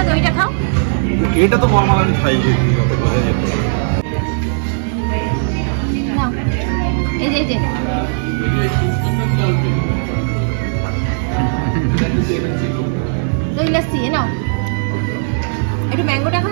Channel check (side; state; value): left; silent; 63 dB below the other